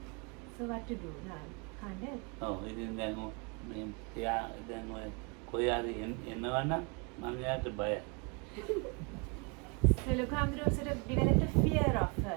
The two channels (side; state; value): left; quieter; 32.5 dB